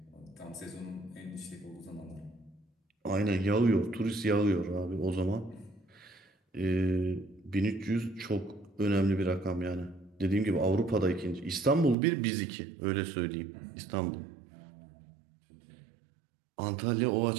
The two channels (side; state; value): left; drops out; at 12.0 s